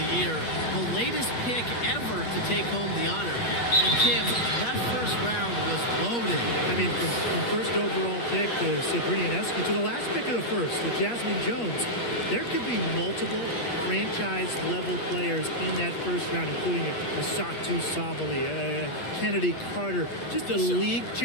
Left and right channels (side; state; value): right; late; 8.4 ms